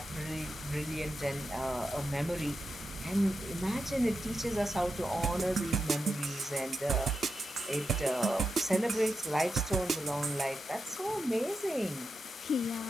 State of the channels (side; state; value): both; normal; correlation 0.88